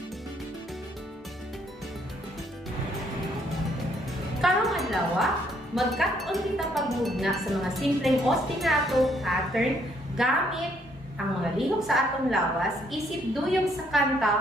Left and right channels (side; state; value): both; normal; correlation 0.69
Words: Pangalawa, magkataon kita pagmugna sa mga simpleng ostinato pattern gamit ang mga lihok sa atong lawas isip duyong sa